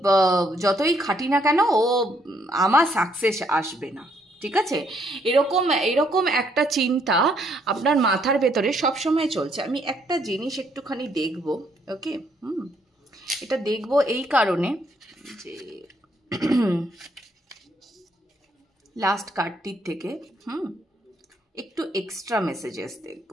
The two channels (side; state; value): both; normal; correlation 0.70